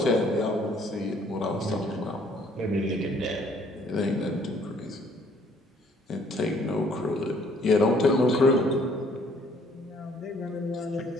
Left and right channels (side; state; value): both; normal; correlation 0.61